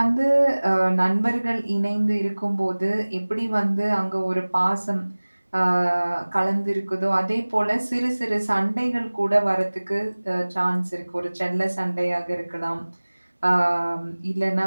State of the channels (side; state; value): both; inverted; correlation -1.00